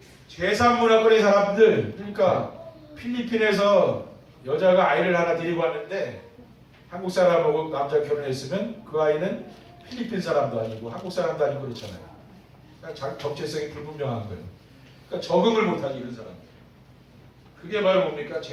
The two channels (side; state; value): both; identical; correlation 1.00